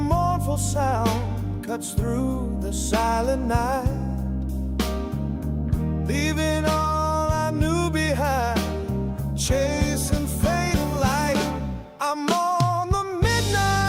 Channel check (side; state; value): both; identical; correlation 1.00